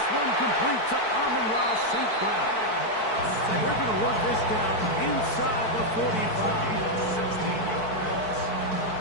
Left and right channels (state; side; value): late; right; 4.6 ms